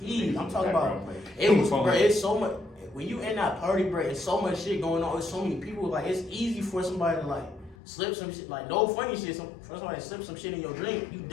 I'm talking about. It was, bro. It's so much. When you in that party, bro, it's so much shit going on. It's so many people. Like it's easy for somebody to like slip some shit. Like no funny shit. For somebody to slip some shit in your drink, you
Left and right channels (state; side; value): drops out; right; at 7.8 s